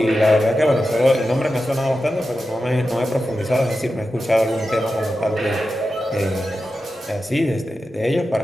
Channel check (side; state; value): both; normal; correlation 0.91